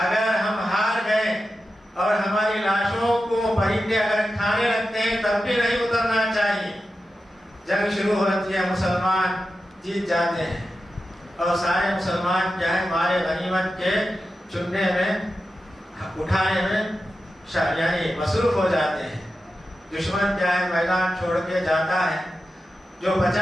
اگر ہم ہار گئے اور ہماری لاشوں کو پرندے اگر کھانے لگتے ہیں تب بھی نہیں اترنا چاہیے۔ جنگ شروع ہوتی ہے، مسلمان جیت جاتے ہیں، اور سارے مسلمان کیا ہے مال غنیمت کے چننے میں اٹھانے میں یعنی مصروف ہو جاتے ہیں. دشمن کیا ہے میدان چھوڑ کے جاتا ہے. جو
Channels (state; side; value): normal; both; correlation 0.91